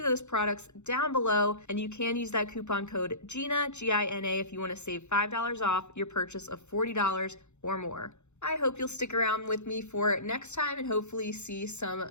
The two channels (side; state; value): right; late; 0.83 ms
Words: those products down below, and you can use that coupon code GINA, G-I-N-A, if you want to save $5 off your purchase of $40 or more. I hope you'll stick around with me for next time and hopefully see some